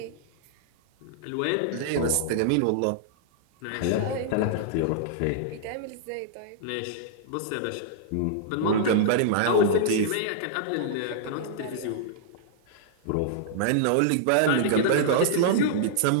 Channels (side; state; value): both; different; correlation -0.02